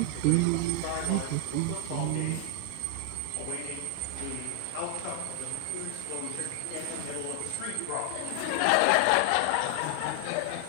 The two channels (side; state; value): both; different; correlation 0.00